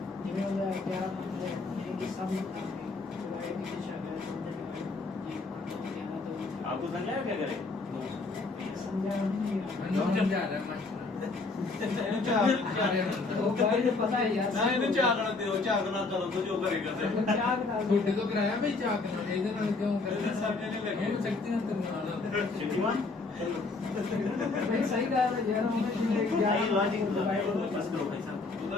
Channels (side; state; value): right; quieter; 3.8 dB